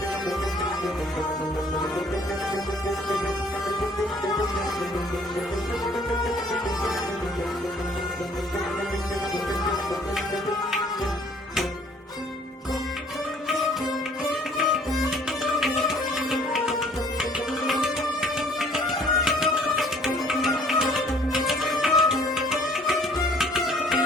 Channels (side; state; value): both; normal; correlation 0.58